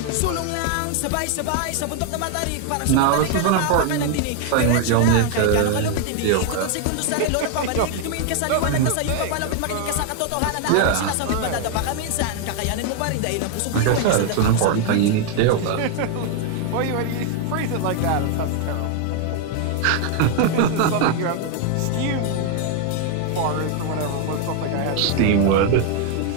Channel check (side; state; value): both; different; correlation 0.00